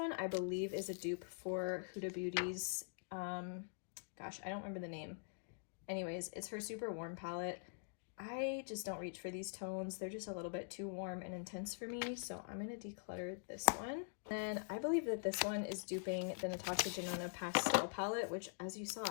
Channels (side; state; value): right; silent; digital silence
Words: I believe is a dupe for Huda Beauty's, gosh, I don't remember the name. Anyways, it's her super warm palette. I just don't reach for these tones. They're just a little bit too warm and intense for me, so I'm gonna declutter this one. Then I believe that this one is duping the Natasha Denona Pastel palette, which, as you saw,